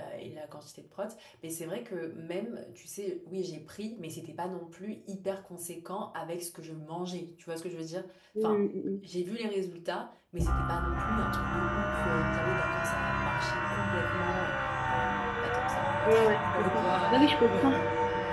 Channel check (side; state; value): both; identical; correlation 1.00